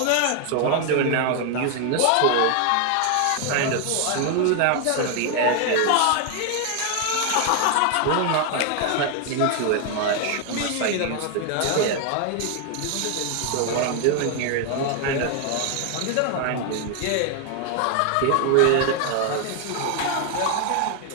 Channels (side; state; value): both; different; correlation 0.00